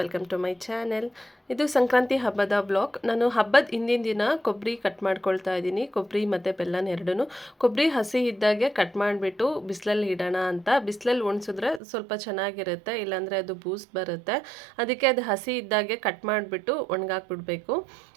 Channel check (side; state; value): left; drops out; at 11.8 s